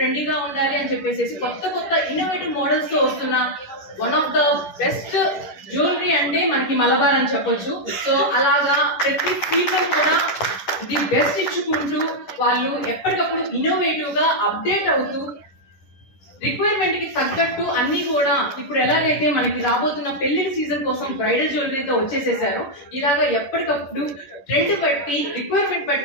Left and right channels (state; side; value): late; right; 10 ms